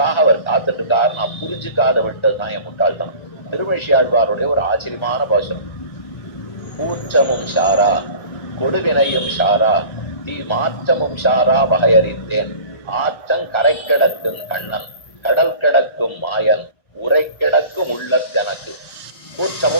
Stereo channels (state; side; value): late; right; 1.5 ms